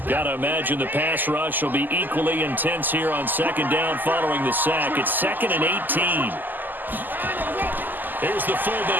Got to imagine the pass rush will be equally intense here on 2nd down following the sack. It's 2nd and 18. Here's the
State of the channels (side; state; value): left; late; 0.087 ms